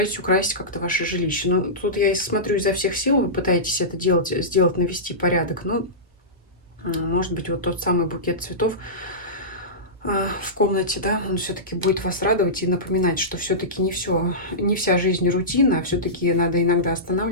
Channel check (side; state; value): both; normal; correlation -0.17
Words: украсить как-то ваше жилище. Ну, тут я смотрю изо всех сил, вы пытаетесь это делать, сделать, навести порядок, но Может быть, вот тот самый букет цветов в комнате, да, он все-таки будет вас радовать и напоминать, что все-таки не вся жизнь рутина, а все-таки надо иногда